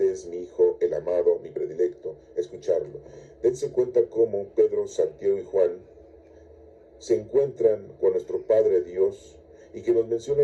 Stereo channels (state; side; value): identical; both; correlation 1.00